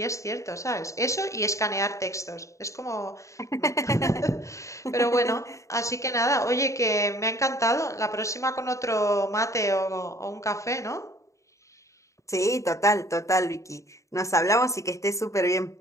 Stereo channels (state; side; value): late; right; 0.15 ms